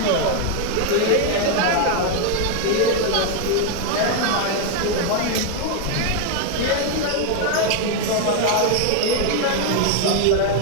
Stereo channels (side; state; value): both; different; correlation 0.00